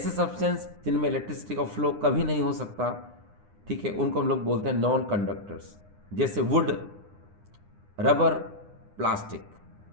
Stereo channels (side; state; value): left; late; 9.8 ms